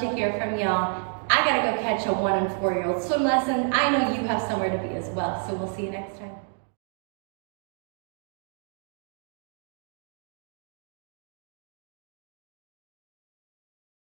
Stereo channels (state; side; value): silent; left; 57 dB below the other